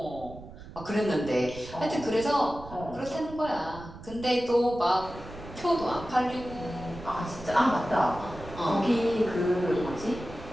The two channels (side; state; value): right; noise; rumble, 15 dB below the sound